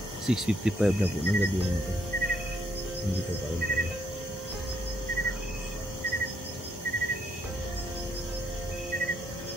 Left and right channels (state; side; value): normal; both; correlation 0.72